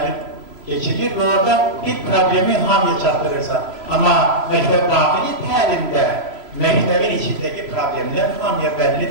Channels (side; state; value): left; late; 3.0 ms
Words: keçirir və orada bir problemi hamıya çatdırırsa. Amma məktəb daxili təlimdə məktəbin içindəki problemlər hamıya